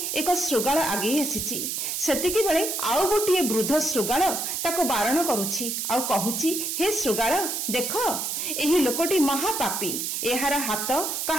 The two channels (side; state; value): right; noise; hiss, 2 dB below the sound